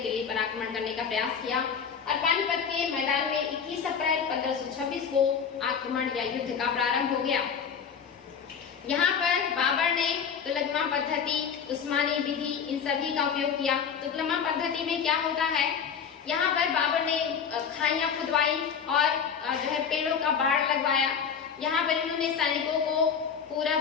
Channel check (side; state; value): right; quieter; 6.9 dB